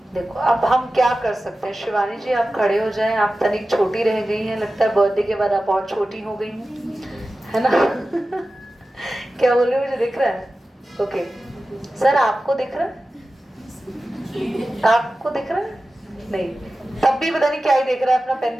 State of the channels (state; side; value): normal; both; correlation 0.95